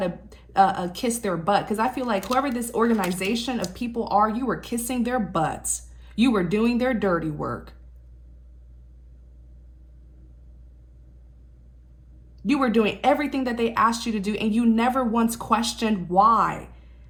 kiss their butt. Because I feel like whoever this organization of people are, you were kissing their butts. You were doing their dirty work. You were doing everything that they asked you to do, and you never once questioned why.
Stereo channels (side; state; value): both; identical; correlation 1.00